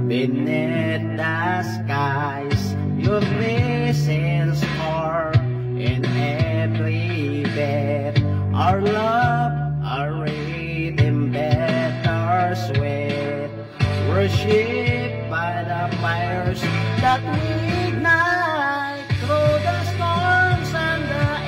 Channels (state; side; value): identical; both; correlation 1.00